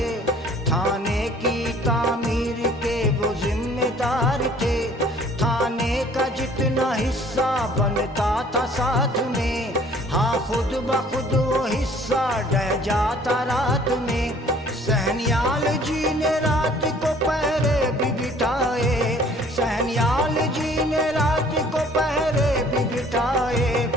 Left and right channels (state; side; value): normal; both; correlation 0.55